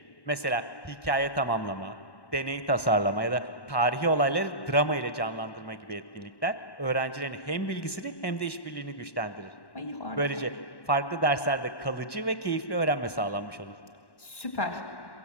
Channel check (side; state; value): right; late; 1.1 ms